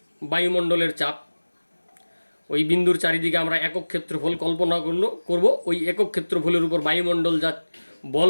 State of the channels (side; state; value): both; inverted; correlation -1.00